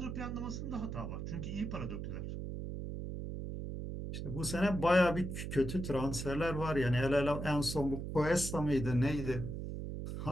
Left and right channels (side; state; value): right; noise; hum, 5 dB below the sound